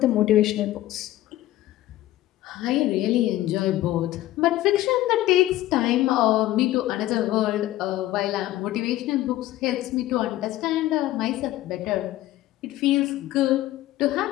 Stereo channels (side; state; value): right; quieter; 15.2 dB